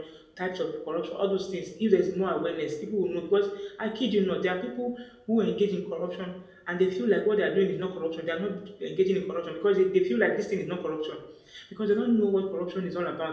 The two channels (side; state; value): both; identical; correlation 1.00